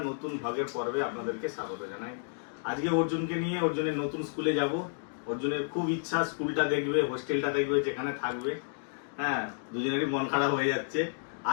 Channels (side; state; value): right; silent; digital silence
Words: নতুন ভাগের পর্বে আপনাদেরকে স্বাগত জানাই। আজকে অর্জুনকে নিয়ে অর্জুনের নতুন স্কুলে যাব। অর্জুনের খুব ইচ্ছা স্কুলটা দেখবে, হোস্টেলটা দেখবে, যেখানে থাকবে। হ্যাঁ, দুজনেরই মন খারাপ হয়ে যাচ্ছে।